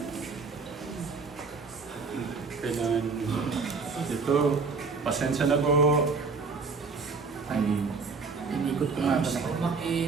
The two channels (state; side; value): quieter; left; 4.6 dB